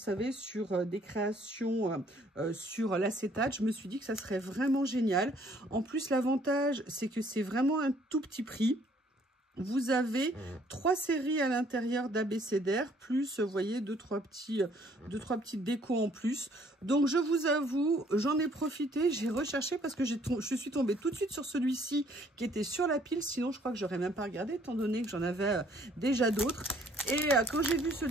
sur des créations sur l'acétate. Je me suis dit que ça serait vraiment génial. En plus, l'avantage, c'est que c'est vraiment un tout petit prix. Vous avez 3 séries à l'intérieur d'abécédaire, plus, vous voyez, 2-3 petites décos en plus. Donc, je vous avoue, j'en ai profité, j'ai recherché parce que je suis tombée tout de suite sur celui-ci qui était sur la pile. Sinon, je crois que j'aurais même pas regardé, étant donné que j'en avais déjà d'autres. Et quand j'ai vu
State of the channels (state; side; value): normal; both; correlation 0.62